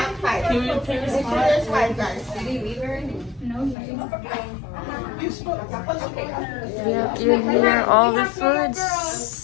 five. There's five, guys. You hear all these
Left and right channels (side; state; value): right; drops out; at 3.8 s